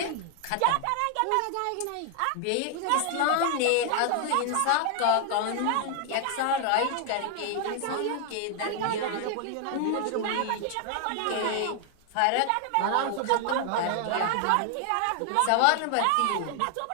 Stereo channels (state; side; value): different; both; correlation 0.00